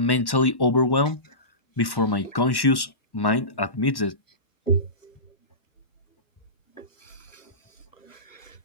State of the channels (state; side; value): late; right; 1.1 ms